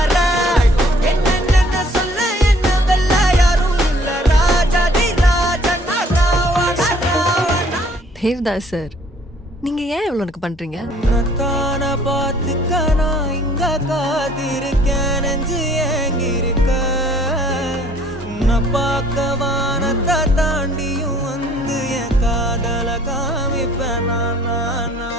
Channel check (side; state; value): both; normal; correlation 0.58